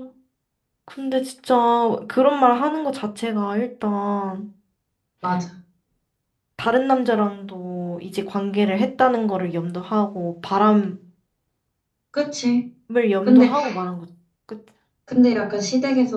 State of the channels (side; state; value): both; identical; correlation 1.00